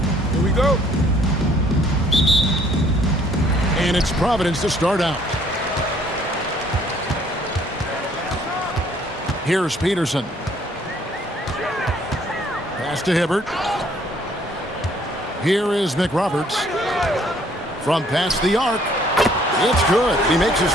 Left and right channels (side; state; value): both; normal; correlation 0.61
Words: Here we go. And it's Providence to start out. Here's Peterson. Pass to Hibbert. Here is McRoberts. From past the arc. It's good. He makes his